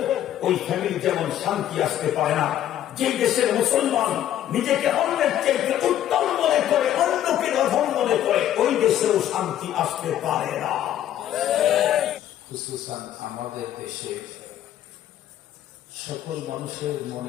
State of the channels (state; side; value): quieter; right; 11.6 dB